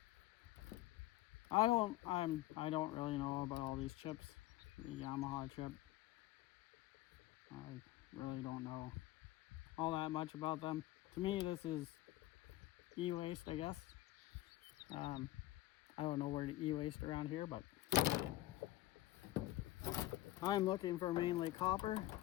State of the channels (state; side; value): quieter; right; 16.2 dB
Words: I don't really know about all these chips. The Yamaha chip. I really don't know all that much about them. To me, this is e-waste, I guess. I don't know where to e-waste around here, but I'm looking for mainly copper